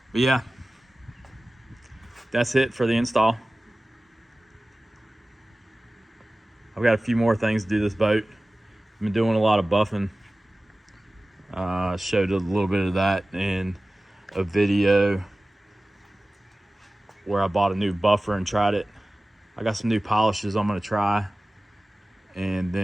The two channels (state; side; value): normal; both; correlation 0.97